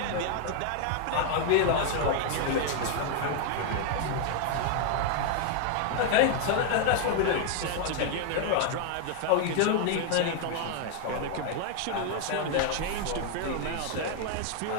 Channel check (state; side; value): different; both; correlation 0.00